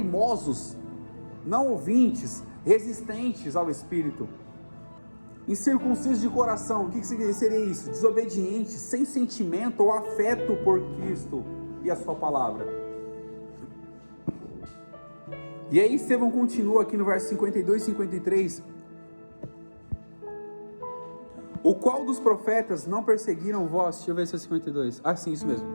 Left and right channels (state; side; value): inverted; both; correlation -1.00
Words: não ouvintes, resistentes ao Espírito, incircuncisos de coração. O que seria isso? Desobedientes, sem sentimento ou afeto por Cristo e a sua palavra. E aí Estevão continua aqui no verso 52 e 53. O qual dos profetas não perseguiram vós? Deixa eu ver se é 52. Ah, sim, isso mesmo.